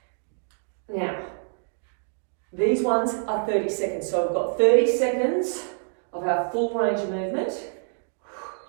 Now, these ones are 30 seconds. So we've got 30 seconds of our full range of movement.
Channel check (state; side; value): silent; left; digital silence